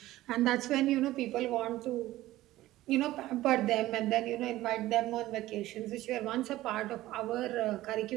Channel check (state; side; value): quieter; left; 16.1 dB